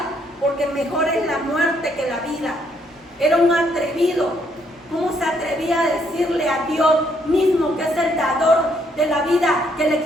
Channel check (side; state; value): both; normal; correlation 0.71